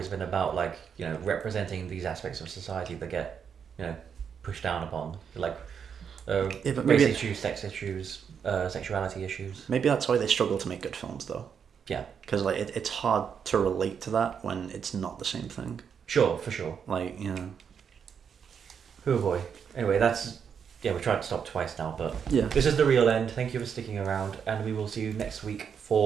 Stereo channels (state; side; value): quieter; left; 7.2 dB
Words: been about representing these aspects of society that get pushed down upon, like but race issues, sex issues, sexuality issues. Maybe that's why they struggle to make good films, though. Yeah, because it's hard to relate to that when it's not the same thing. Sure, for sure. Oh boy. Anyway, we tried to stop twice now, but this is the real end. Thank you for sticking around, and we will see you next week